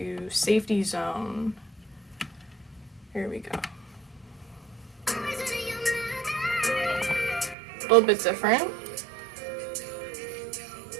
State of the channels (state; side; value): drops out; left; at 7.6 s